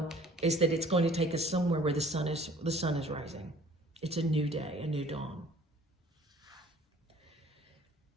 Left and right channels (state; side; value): normal; both; correlation 0.52